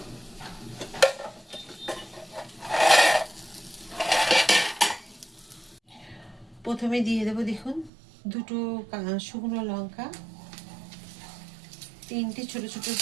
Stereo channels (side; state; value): left; drops out; at 7.9 s